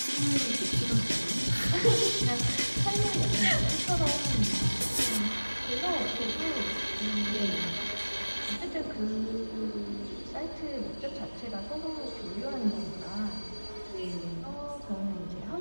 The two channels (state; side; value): inverted; both; correlation -1.00